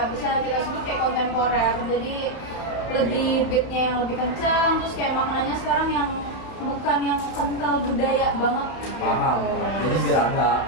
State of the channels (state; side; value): late; right; 31 ms